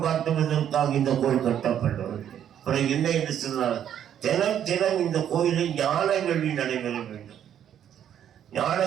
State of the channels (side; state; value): left; quieter; 9.8 dB